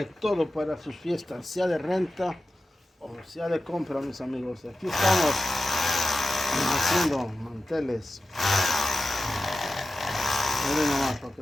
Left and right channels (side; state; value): both; normal; correlation 0.94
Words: todo para sus fiestas, sea de renta o sea de compra, mis amigos. Aquí estamos haciendo manteles. Miren nomás para